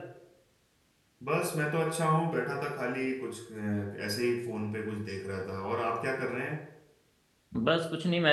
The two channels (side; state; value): both; identical; correlation 1.00